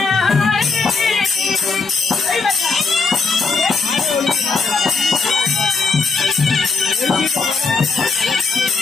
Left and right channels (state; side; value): quieter; right; 4.4 dB